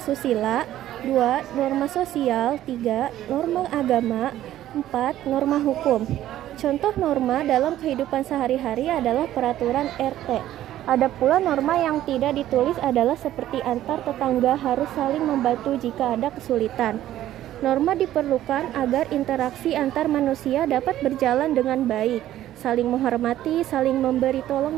2. Norma sosial, 3. Norma agama, 4. Norma hukum. Contoh norma dalam kehidupan sehari-hari adalah peraturan RT. Ada pula norma yang tidak ditulis adalah seperti antar tetangga harus saling membantu jika ada kesulitan. Norma diperlukan agar interaksi antar manusia dapat berjalan dengan baik, saling menghormati, saling memberi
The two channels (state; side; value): quieter; left; 13.1 dB